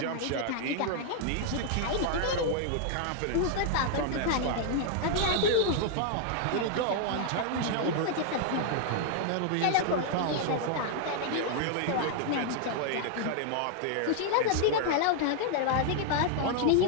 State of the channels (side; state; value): both; different; correlation 0.00